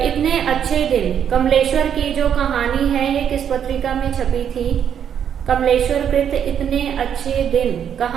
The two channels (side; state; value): left; quieter; 8.6 dB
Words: इतने अच्छे दिन कमलेश्वर की जो कहानी है ये किस पत्रिका में छपी थी? कमलेश्वर कृत इतने अच्छे दिन